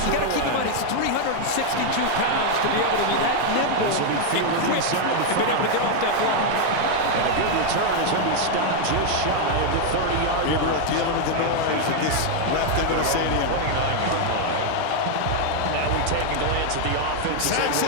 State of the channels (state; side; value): different; both; correlation 0.00